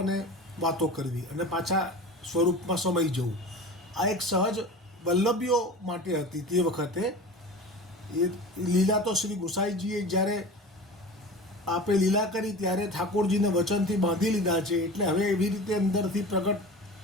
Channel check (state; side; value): normal; both; correlation 0.35